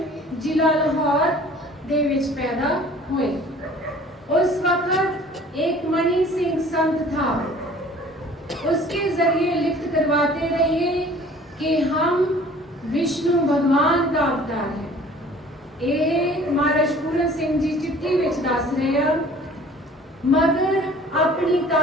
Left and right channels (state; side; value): normal; both; correlation 0.49